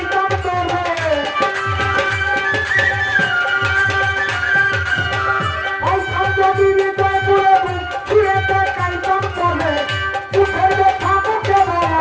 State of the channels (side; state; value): both; identical; correlation 1.00